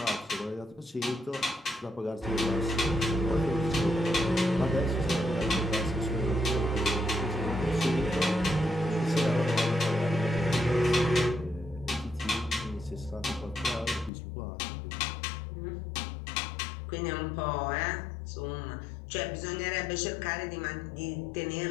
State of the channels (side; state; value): right; drops out; at 14.1 s